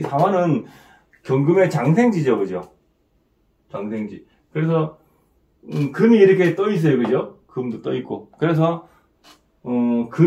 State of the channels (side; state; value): both; identical; correlation 1.00